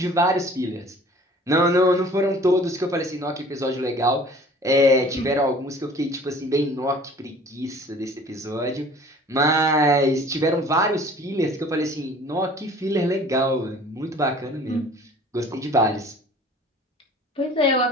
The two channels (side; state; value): both; normal; correlation 0.48